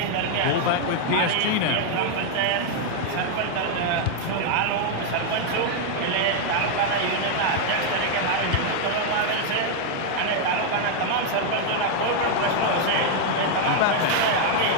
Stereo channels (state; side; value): different; both; correlation 0.00